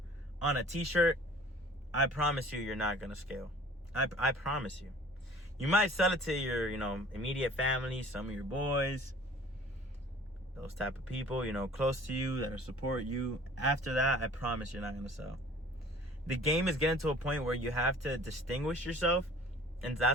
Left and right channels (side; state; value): both; normal; correlation 0.49